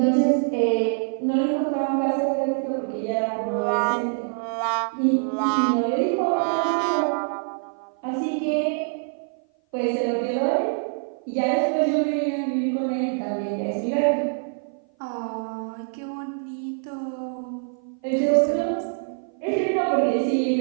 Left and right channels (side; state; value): left; silent; 56 dB below the other